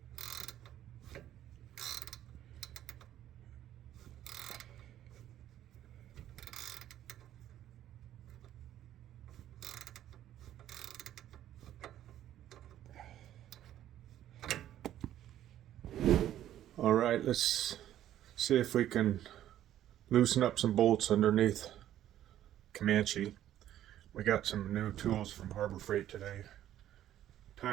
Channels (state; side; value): quieter; left; 12.1 dB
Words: All right, let's see if we can loosen up some bolts underneath Comanche. We got some new tools from Harbor Freight today.